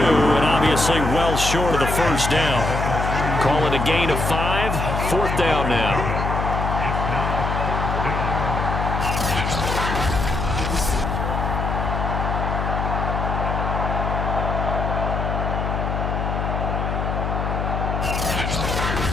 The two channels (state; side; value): noise; left; hum, 1 dB below the sound